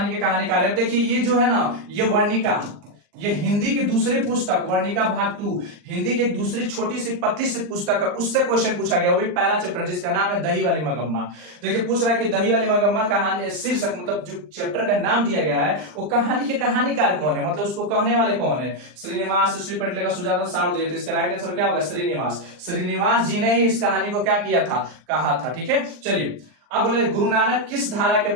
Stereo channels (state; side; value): late; left; 39 ms